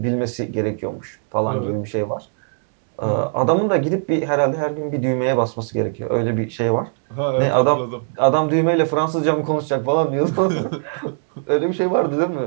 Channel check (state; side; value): silent; left; digital silence